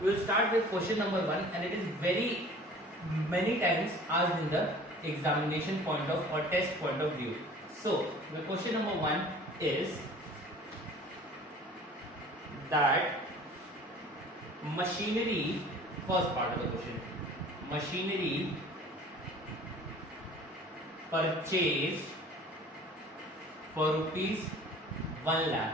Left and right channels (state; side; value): normal; both; correlation 0.47